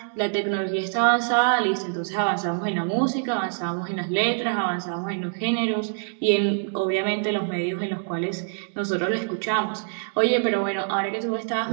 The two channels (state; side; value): silent; left; digital silence